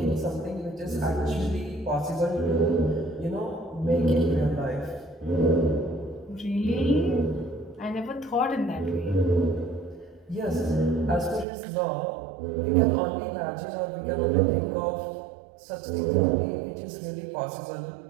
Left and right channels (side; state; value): left; drops out; at 11.5 s